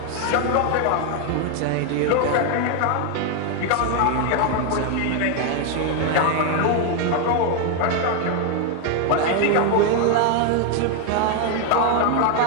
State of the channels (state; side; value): different; both; correlation 0.00